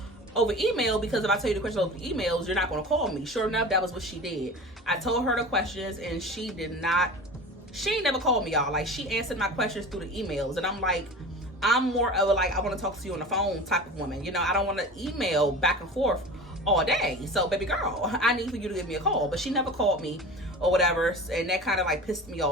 over email, because if I tell you the questions over emails, you're not going to call me. Sure enough, that was what she did. I told her the questions, and she ain't never called me, y'all. Like, she answered my questions through the emails, and I'm like, I'm more of a, like, I want to talk to you on the phone type of woman. You know, I don't want to email back and forth all day. So, baby girl, I need for you to give me a call. But she never called me or whatever, and that kind of like pissed me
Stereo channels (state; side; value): normal; both; correlation 0.34